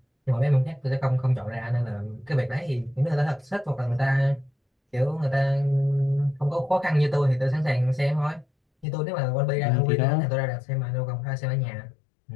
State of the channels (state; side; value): drops out; right; at 8.8 s